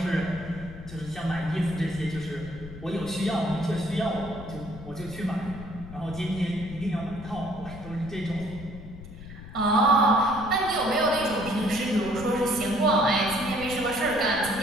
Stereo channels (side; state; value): left; noise; rumble, 14 dB below the sound